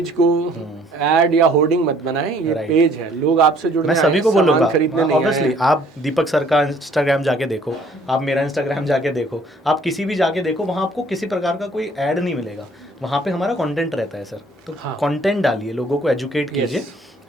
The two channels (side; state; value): both; normal; correlation 0.59